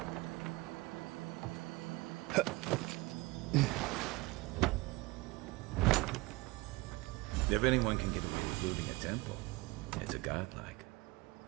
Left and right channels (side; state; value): left; quieter; 22.6 dB